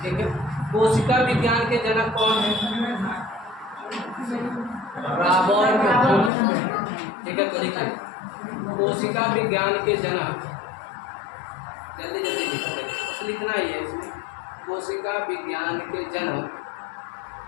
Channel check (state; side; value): drops out; right; at 6.3 s